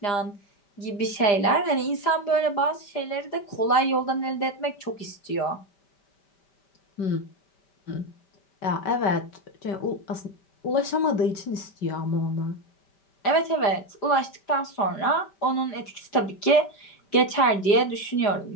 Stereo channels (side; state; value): right; late; 4.9 ms